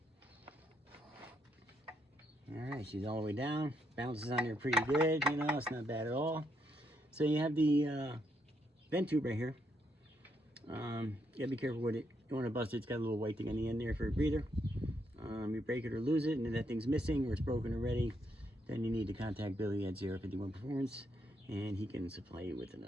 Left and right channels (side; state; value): both; normal; correlation 0.77